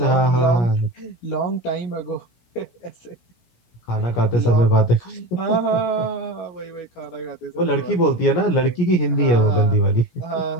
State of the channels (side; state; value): right; late; 17 ms